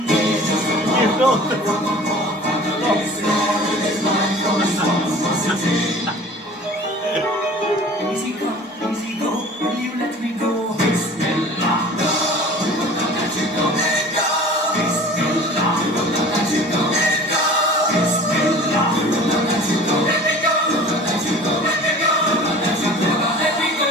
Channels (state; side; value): normal; both; correlation 0.43